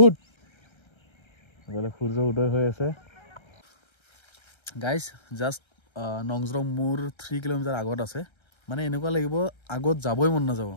ইফালে সূৰ্য উদয় হৈ আছে গাইজ জাষ্ট নংজৰং মোৰ 3 কিলোমিটাৰ আগত আছে মানে এনেকুৱা লাগিব আগত যাবই মন নাযাব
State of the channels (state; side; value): late; right; 1.3 ms